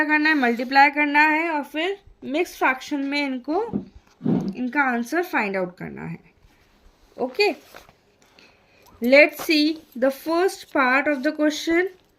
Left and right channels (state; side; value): identical; both; correlation 1.00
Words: करना है, मल्टीप्लाई करना है और फिर मिक्स्ड फ्रैक्शन में इनका आंसर फाइंड आउट करना है। Okay, let's see the first part of the question.